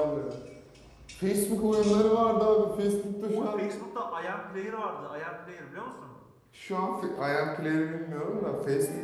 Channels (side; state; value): both; identical; correlation 1.00